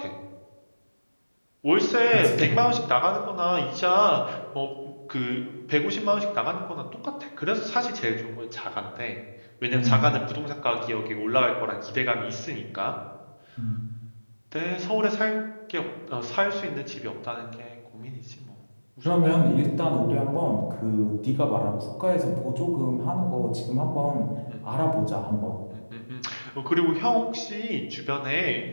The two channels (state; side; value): inverted; both; correlation -1.00